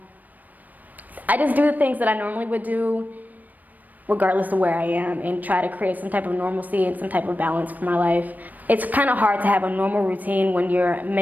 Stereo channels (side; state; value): left; late; 0.083 ms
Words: I just do the things that I normally would do regardless of where I am, and try to create some type of normalcy and some type of balance for my life. It's kind of hard to have a normal routine when you're